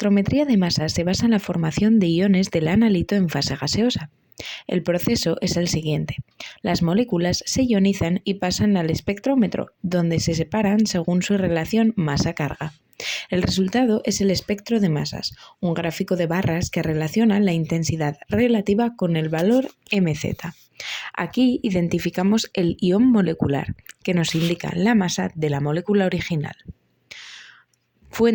de masas se basa en la formación de iones del analito en fase gaseosa. El proceso es el siguiente. Las moléculas se ionizan y pasan al espectrómetro, donde se separan según su relación masa-carga. El resultado es el espectro de masas, un gráfico de barras que relaciona la intensidad relativa con el valor mz. Aquí identificamos el ion molecular, que nos indica la masa de la molécula original.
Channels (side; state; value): both; identical; correlation 1.00